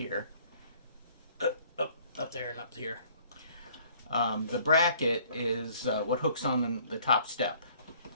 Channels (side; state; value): both; inverted; correlation -0.57